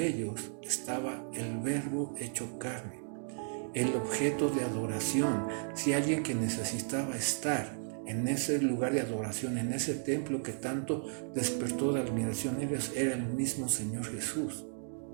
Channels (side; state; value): left; silent; 55 dB below the other